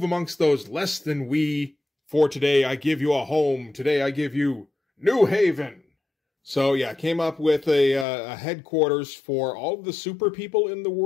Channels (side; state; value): right; drops out; at 8.1 s